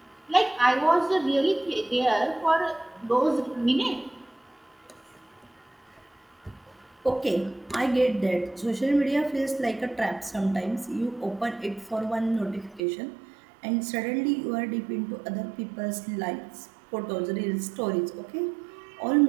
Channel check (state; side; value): drops out; left; at 12.8 s